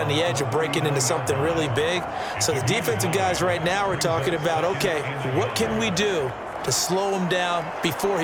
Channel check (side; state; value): both; identical; correlation 1.00